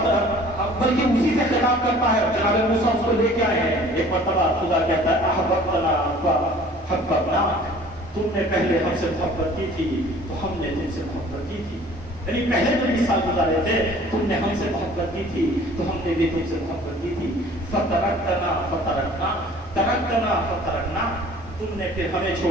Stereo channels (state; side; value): normal; both; correlation 0.50